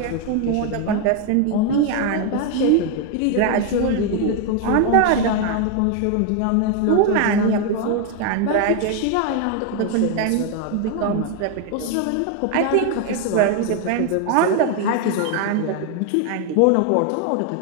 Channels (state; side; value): different; both; correlation 0.01